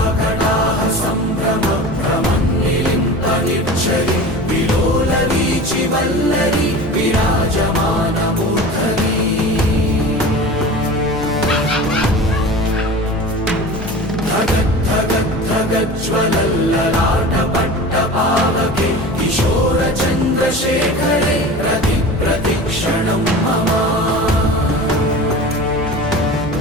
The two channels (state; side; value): normal; both; correlation 0.35